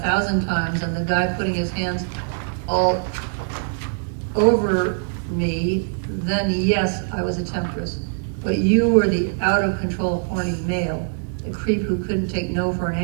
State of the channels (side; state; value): left; silent; digital silence